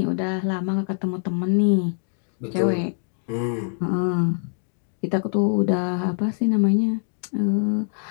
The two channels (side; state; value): right; silent; 63 dB below the other